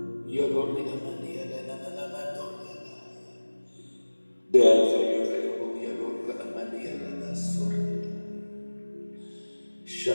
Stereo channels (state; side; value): inverted; both; correlation -1.00